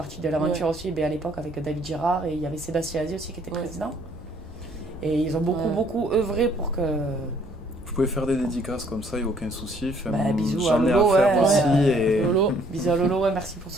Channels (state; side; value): normal; both; correlation 0.62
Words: de l'aventure aussi, à l'époque avec David Girard, et il y avait Sébastien Azier aussi qui était Ouais. président. Et ils ont beaucoup œuvré pour que... Vous pouvez faire des dédicaces comme ça, il n'y a aucun souci. Enfin, bisous à j'en ai à Lolo, faire ouais, aussi. ouais. Et, Lolo. Bisous à Lolo, ouais, merci pour tout